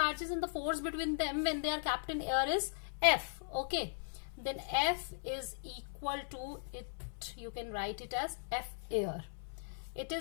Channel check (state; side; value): silent; right; 52 dB below the other